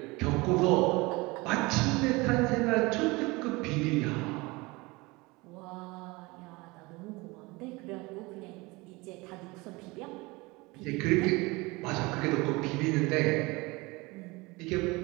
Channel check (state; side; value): quieter; left; 23.8 dB